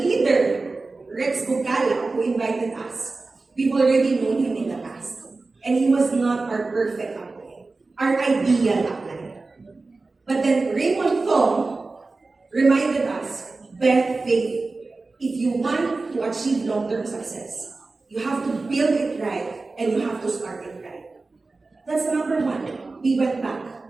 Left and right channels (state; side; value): quieter; left; 3.6 dB